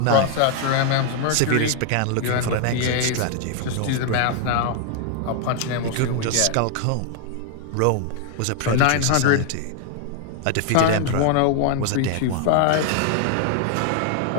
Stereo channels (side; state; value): both; different; correlation 0.00